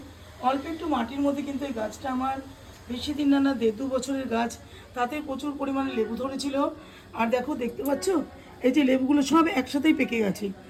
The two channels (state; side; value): identical; both; correlation 1.00